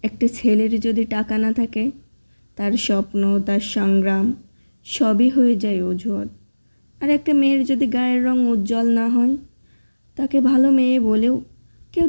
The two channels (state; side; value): inverted; both; correlation -1.00